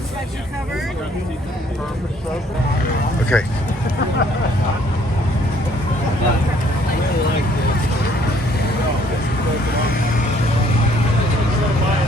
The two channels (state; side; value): normal; both; correlation 0.62